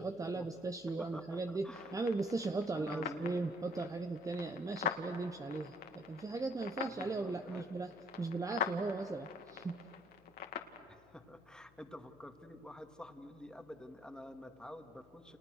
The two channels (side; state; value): left; noise; hum, 27 dB below the sound